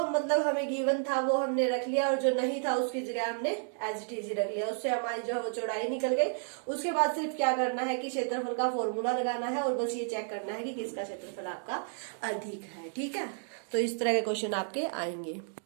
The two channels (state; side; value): silent; left; digital silence